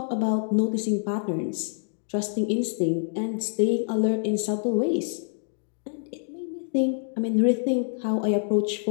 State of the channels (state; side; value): silent; right; digital silence